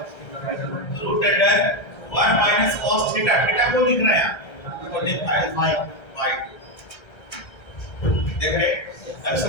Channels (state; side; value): late; right; 1.3 ms